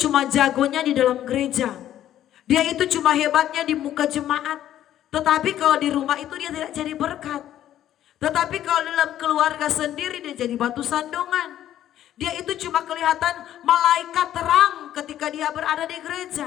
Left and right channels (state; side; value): quieter; right; 11.9 dB